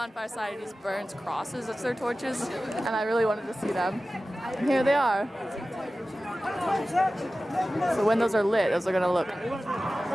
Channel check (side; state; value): both; normal; correlation 0.95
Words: Societies burns crosses as their torches, and I really wanted to see them. And here they are. So when those are lit, those are gonna look